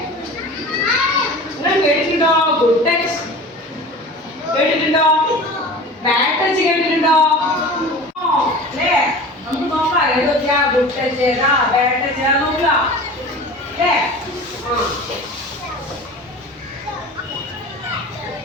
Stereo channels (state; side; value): normal; both; correlation 0.37